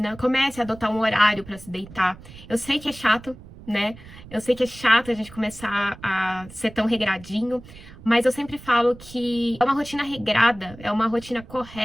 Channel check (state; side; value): noise; right; rumble, 18 dB below the sound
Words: comece a adotar um horário para se deitar. Eu sei que é chato, né? Eu sei que é chato a gente começar a ser tão regradinho, mas eu sempre falo que é uma rotina regrada, é uma rotina